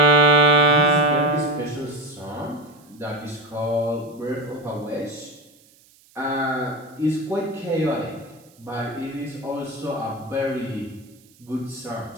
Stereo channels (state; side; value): noise; right; hiss, 29 dB below the sound